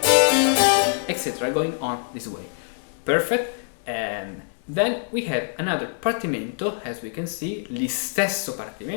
etc. Going on this way. Perfect. And then we have another partimento. As we can see, l'istesso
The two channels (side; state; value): right; silent; 62 dB below the other